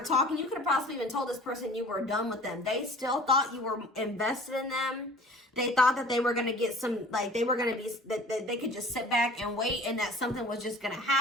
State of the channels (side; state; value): both; normal; correlation 0.45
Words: talking, you could have possibly even told this person you were done with them. They still thought you were invested in them. They thought that they were going to get some, like, they were going to be, that they could just sit back and wait and that something was just going to